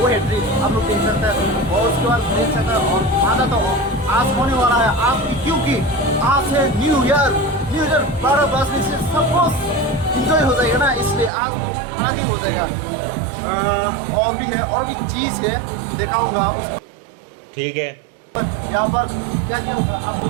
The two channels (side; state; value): left; drops out; at 11.3 s